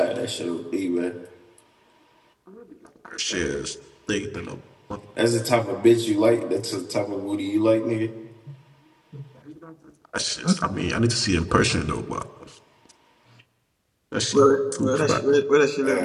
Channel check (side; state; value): both; identical; correlation 1.00